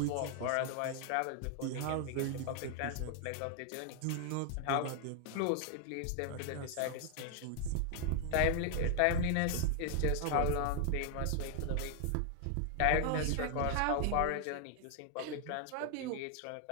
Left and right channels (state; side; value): different; both; correlation 0.00